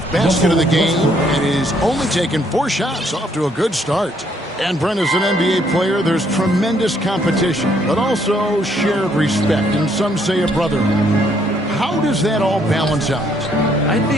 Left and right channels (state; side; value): normal; both; correlation 0.68